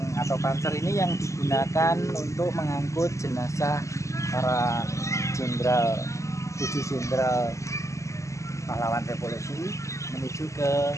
atau panser ini yang digunakan untuk mengangkut jenazah para jenderal, 7 jenderal pahlawan revolusi menuju ke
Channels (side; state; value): right; late; 0.15 ms